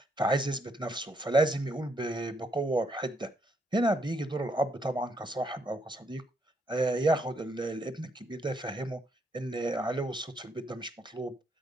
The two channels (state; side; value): normal; both; correlation 0.74